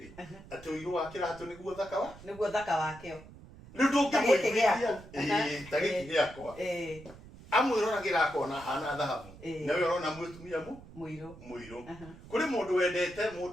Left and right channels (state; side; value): noise; right; rumble, 18 dB below the sound